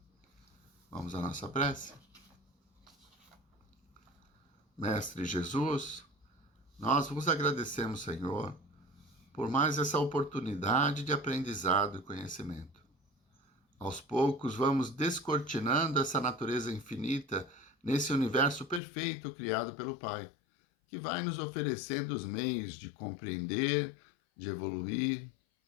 Vamos à nossa prece? Mestre Jesus, nós vos agradecemos, Senhor, por mais essa oportunidade de aprendizado e conhecimento. Aos poucos vamos descortinando essa natureza infinita nesse universo perfeito criado pelo Pai, que vai nos oferecendo os meios de compreender, de evoluir,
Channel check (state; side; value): drops out; right; at 18.8 s